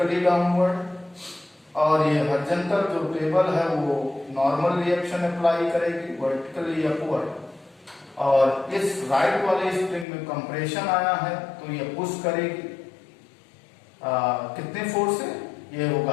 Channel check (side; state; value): right; drops out; at 10.1 s